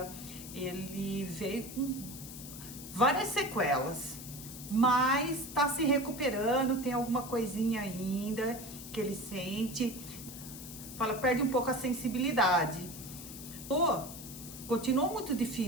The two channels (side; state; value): left; noise; hiss, 12 dB below the sound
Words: ele veio com várias sequelas, mas tá se recuperando, tem alguma coisinha ainda que ele sente, perde um pouco a sensibilidade. Continuou muito